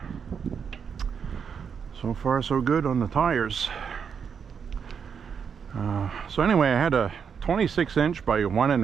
So far so good on the tires. So anyway, I had a 26 inch by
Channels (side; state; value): left; quieter; 6.8 dB